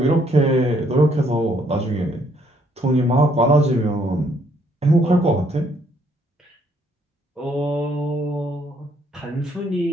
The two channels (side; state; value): both; normal; correlation 0.68